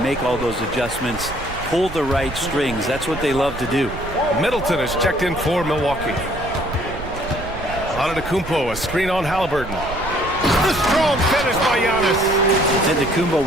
all those adjustments, pull the right strings. That's what they love to do. Middleton is checked in for Milwaukee. Antetokounmpo, a screen on Halliburton. The strong finish by Giannis. Antetokounmpo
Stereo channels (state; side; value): noise; right; rumble, 11 dB below the sound